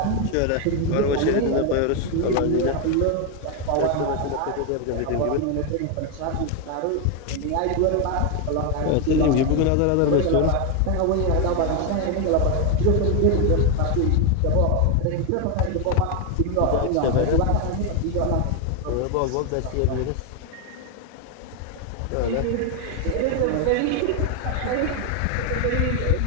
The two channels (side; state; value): both; different; correlation 0.01